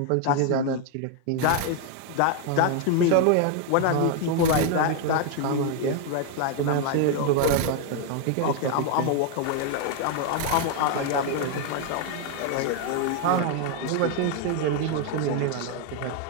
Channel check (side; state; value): both; different; correlation 0.00